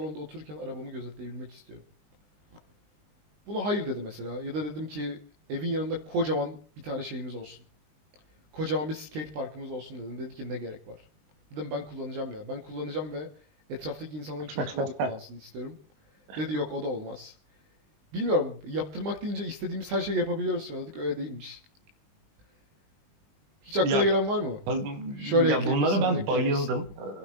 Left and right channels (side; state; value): left; late; 20 ms